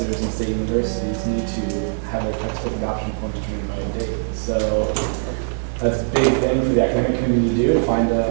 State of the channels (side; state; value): left; silent; digital silence